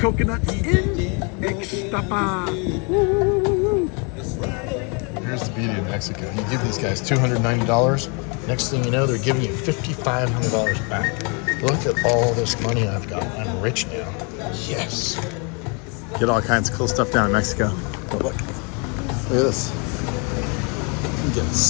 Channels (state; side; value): quieter; right; 34.1 dB